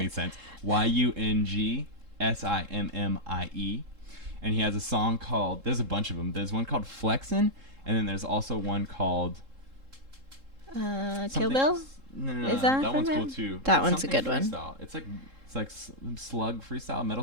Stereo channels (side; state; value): left; late; 3.7 ms